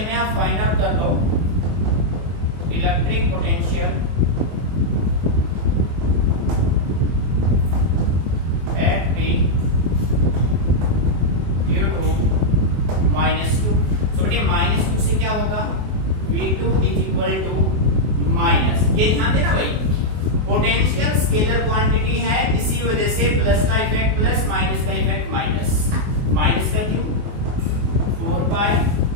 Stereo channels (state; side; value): late; left; 24 ms